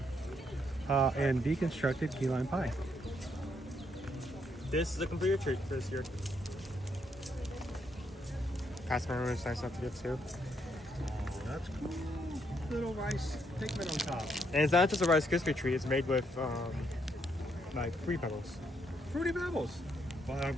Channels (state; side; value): normal; both; correlation 0.74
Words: and deconstructed key lime pie. This is a complete treat for this year. Past memory is nice enough to get too. Oh, that's cool. Little rice pigment on top. And it's not just a Rice Krispie treat, it's made with like Fruity Pebbles. Fruity Pebbles. Well, I don't